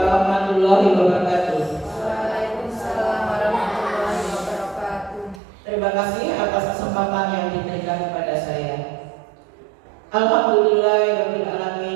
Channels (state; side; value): drops out; left; at 5.4 s